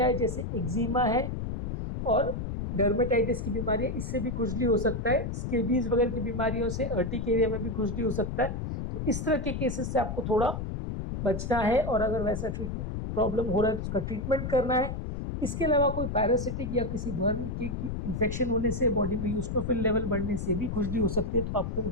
हैं जैसे एक्जिमा है और डर्मेटाइटिस की बीमारी है, इससे भी खुजली हो सकता है। स्केबीज वगैरह की बीमारियों से अर्टिक एरिया में भी खुजली हो सकता है। तो इस तरह के केसेस से आपको थोड़ा बचना है और अगर वैसा प्रॉब्लम हो रहा है तो उसका ट्रीटमेंट करना है। इसके अलावा कोई पैरासिटिक या किसी वर्म की इन्फेक्शन होने से, बॉडी में यूस्टोफिल लेवल बढ़ने से भी खुजली हो सकती है, तो आपको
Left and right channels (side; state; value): left; noise; rumble, 4 dB below the sound